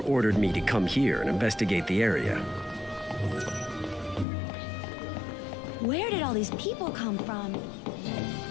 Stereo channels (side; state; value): right; drops out; at 4.2 s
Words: ordered me to come here and investigate the area. Where did all these people come from?